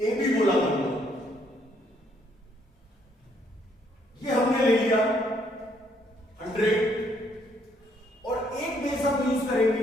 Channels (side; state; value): both; normal; correlation 0.69